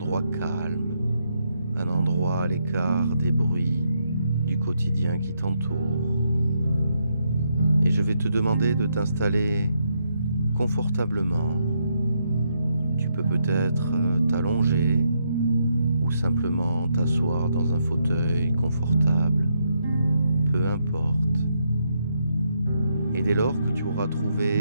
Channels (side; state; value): both; inverted; correlation -0.78